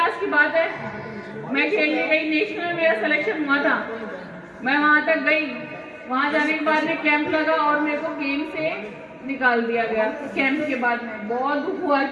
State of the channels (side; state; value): both; identical; correlation 1.00